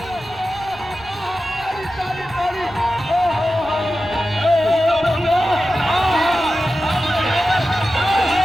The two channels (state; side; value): noise; right; rumble, 20 dB below the sound